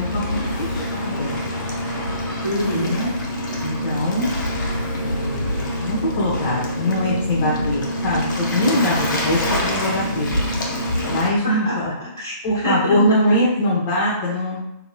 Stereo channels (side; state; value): both; inverted; correlation -0.55